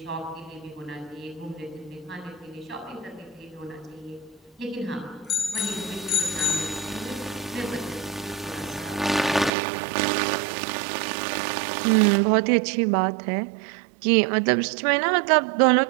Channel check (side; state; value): left; drops out; at 9.5 s